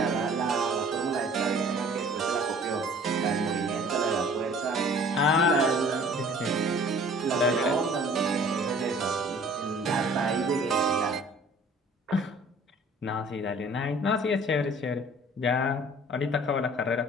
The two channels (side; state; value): both; normal; correlation 0.50